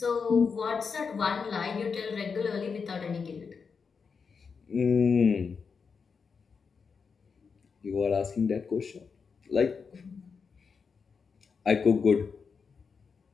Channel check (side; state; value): right; quieter; 5.6 dB